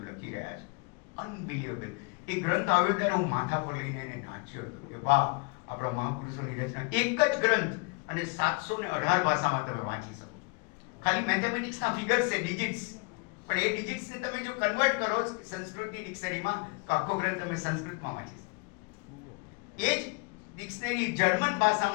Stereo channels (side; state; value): right; quieter; 32.1 dB